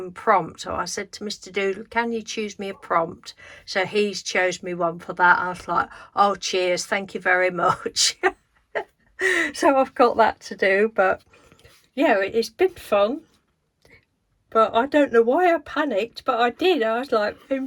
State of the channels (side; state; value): both; identical; correlation 1.00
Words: prompt. So I said to Mr. Doodle, can you choose me a prompt? So he's chose me one for that. I was like, oh cheers, thank you very much. So I've got that to do, but yeah, it's been fun. But I don't know why I panicked, but I did. I was like